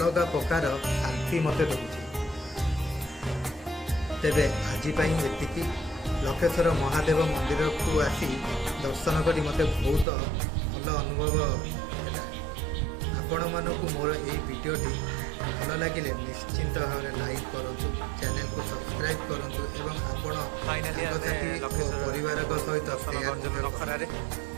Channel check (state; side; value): drops out; left; at 10.1 s